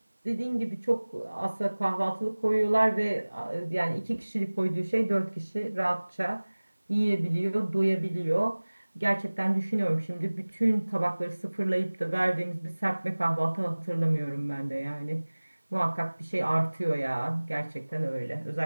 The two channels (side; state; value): both; inverted; correlation -1.00